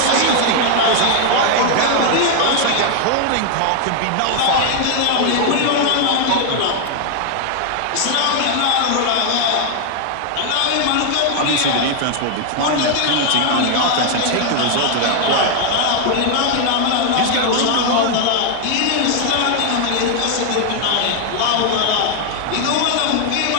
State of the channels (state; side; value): different; both; correlation 0.00